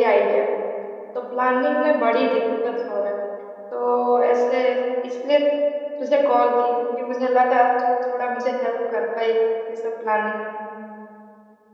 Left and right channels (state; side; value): identical; both; correlation 1.00